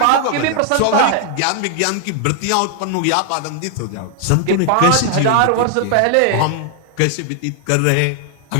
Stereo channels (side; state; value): both; different; correlation 0.00